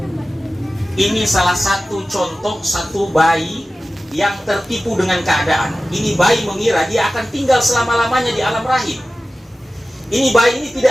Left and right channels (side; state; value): both; normal; correlation 0.96